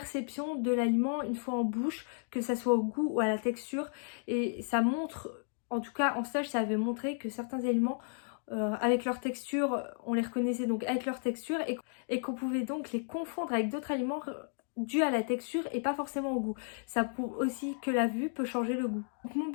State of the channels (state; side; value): silent; right; 56 dB below the other